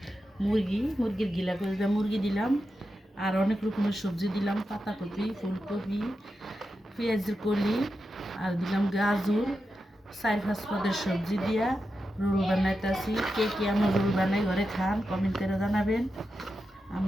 মুরগির গিলা করে দিয়ে মুরগি দিলাম, আর অনেক রকমের সবজি দিলাম, পাতাকপি, ফুলকপি, পেঁয়াজের কলি, আর দিলাম গাজর। 4-5 পদের সবজি দিয়া রোল বানাইতেছি। কে কে আমার রোল বানাই ঘরে খান কমেন্ট করে জানাবেন।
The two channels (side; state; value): both; normal; correlation 0.89